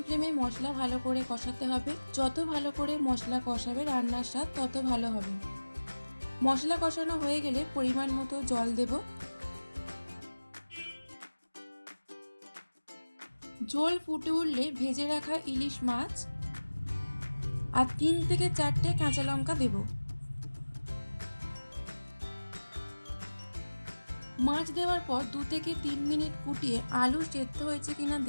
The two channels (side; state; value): both; inverted; correlation -1.00